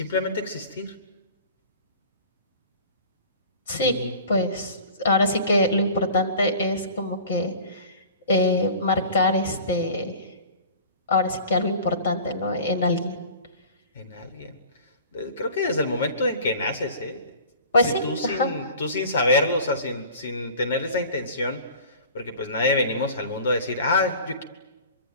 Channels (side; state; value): both; inverted; correlation -0.43